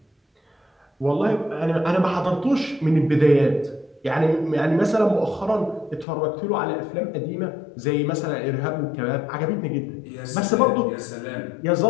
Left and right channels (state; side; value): drops out; right; at 6.1 s